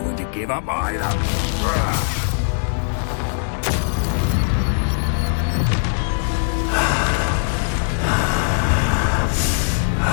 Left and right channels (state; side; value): silent; right; digital silence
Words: when to give up either.